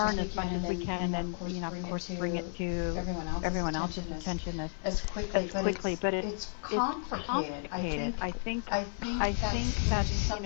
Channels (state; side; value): silent; right; 56 dB below the other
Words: as much as we can, and of course, bring it to everyone else's attention as quickly. But it's complicated. I think that's